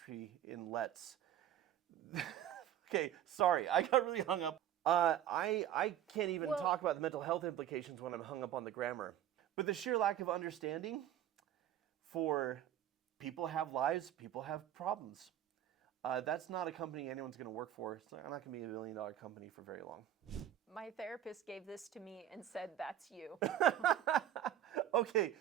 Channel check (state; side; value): quieter; left; 11.0 dB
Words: in let's. Okay, sorry, I got really hung up. I can't even talk about the mental health implications when I'm hung up on the grammar. But the sheer lack of understanding for people have lives, people have problems. That's not a company anyone's going to work for. I'm not going to be $1 million company for very long. My therapist gave this to me and said, that's you. Okay,